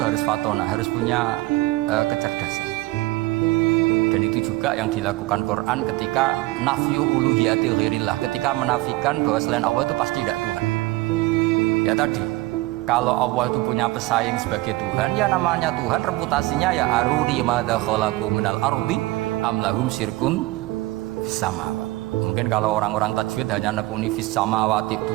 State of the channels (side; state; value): left; quieter; 19.6 dB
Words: harus fatona, harus punya kecerdasan. Dan itu juga yang dilakukan Quran ketika nafyu uluhiyati ghairillah, ketika menafikan bahwa selain Allah itu pasti tidak Tuhan. Ya tadi, kalau Allah itu punya pesaing sebagai Tuhan, ya namanya Tuhan, reputasinya ya aruri madza khalaqu minal ardi am lahum syirkun fis samawati. Mungkin kalau orang-orang tajwid hanya nekuni fis samawati